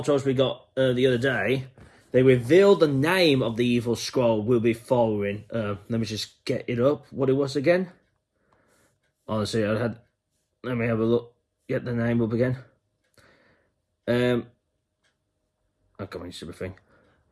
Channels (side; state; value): both; identical; correlation 1.00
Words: we got the other day, they revealed the name of the evil Skrull we'll be following. Let me just get it up, what it was again. Honestly, let me have a look, get the name up again. Oh, come on, stupid thing.